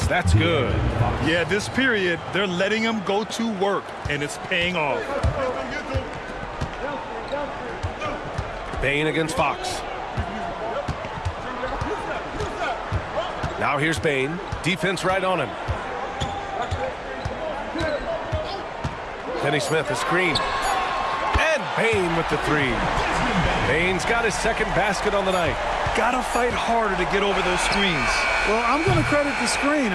that's good. Yeah, this period, they're letting him go to work, and it's paying off. Bane against Fox. Now here's Bane. Defense right on him. Finney-Smith, a screen. And Bane with the three. Bane's got his second basket on the night. Gotta fight harder to get over those screens. Well, I'm going to credit the screen.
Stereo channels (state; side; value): identical; both; correlation 1.00